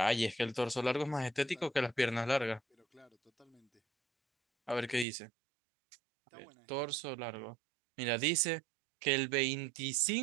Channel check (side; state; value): left; drops out; at 5.1 s